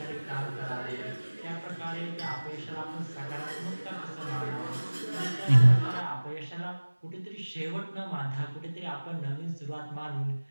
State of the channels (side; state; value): both; inverted; correlation -1.00